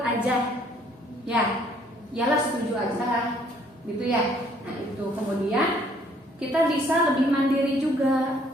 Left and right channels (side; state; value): both; normal; correlation 0.62